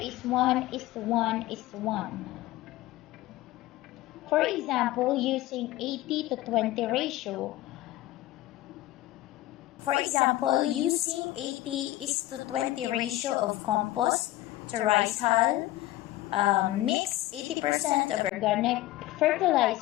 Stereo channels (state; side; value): quieter; right; 16.2 dB